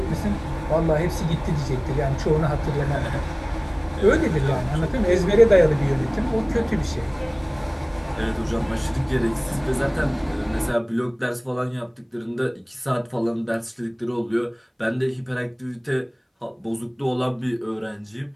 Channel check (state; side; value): identical; both; correlation 1.00